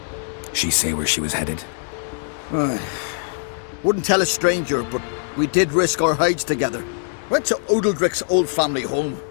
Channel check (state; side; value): silent; right; digital silence